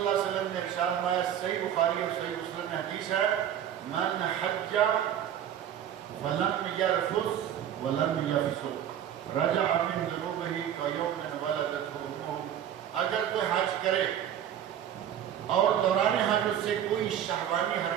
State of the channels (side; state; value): left; quieter; 10.0 dB